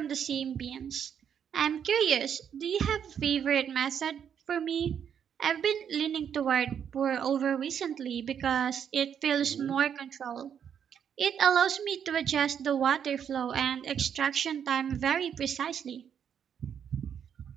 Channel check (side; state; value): left; quieter; 8.2 dB